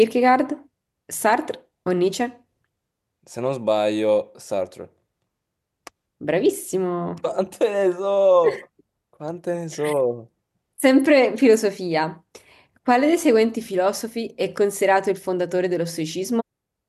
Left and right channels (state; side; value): identical; both; correlation 1.00